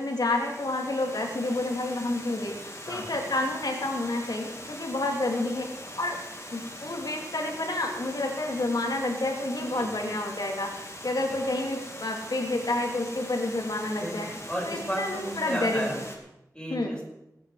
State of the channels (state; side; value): normal; both; correlation 0.66